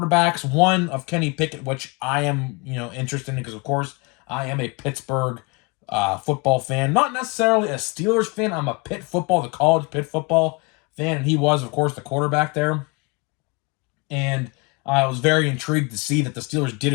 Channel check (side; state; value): right; quieter; 29.6 dB